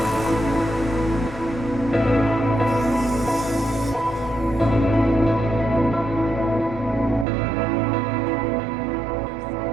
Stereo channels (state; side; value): drops out; left; at 7.2 s